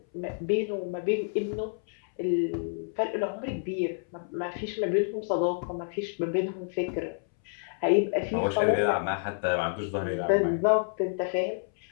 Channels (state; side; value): silent; right; 59 dB below the other